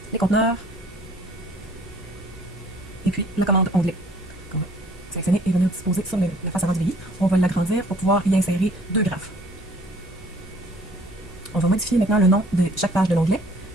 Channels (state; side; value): normal; both; correlation 0.57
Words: les conteneurs et puis la commande onglet. On va sélectionner et venir disposer sur la face avant du VI. On va l'agrandir pour pouvoir y insérer deux graphes. On va modifier maintenant le nom de chaque page de l'onglet.